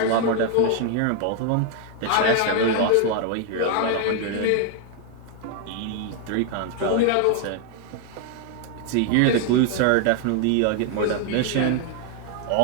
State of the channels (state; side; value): different; both; correlation 0.00